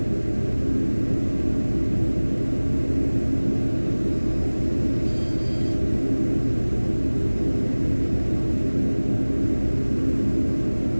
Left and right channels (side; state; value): both; inverted; correlation -1.00